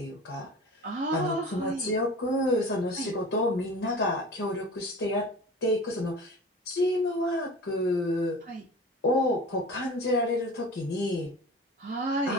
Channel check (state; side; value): normal; both; correlation 0.38